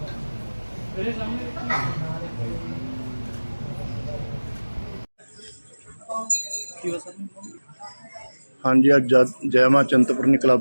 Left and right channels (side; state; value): both; inverted; correlation -1.00